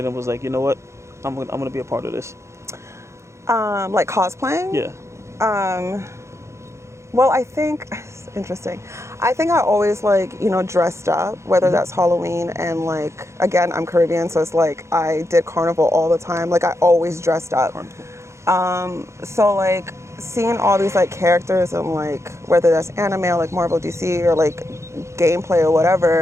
and was like, you know what, I'm gonna be a part of this. Like cosplaying. Yeah. Well, I think it's interesting. I think I always like, you know, dressed up, whether hmm that's Halloween and like again, I'm Caribbean, so it's like I did carnival all the time. Like I always dressed up. Carnival. So like seeing all these like characters and like whether that's anime or like Marvel DC or like gameplay or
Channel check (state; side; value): late; left; 0.14 ms